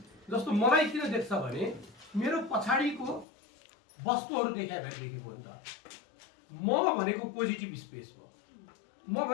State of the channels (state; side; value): drops out; right; at 3.2 s